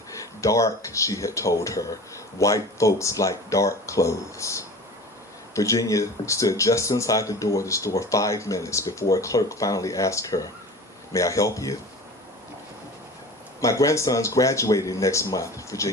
Dark, she had told her. White folks like dark clothes. Virginia stood just inside the door of the store 5 minutes before a clerk finally asked her, "May I help you?" "My grandson's graduating next month,"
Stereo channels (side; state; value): both; normal; correlation 0.38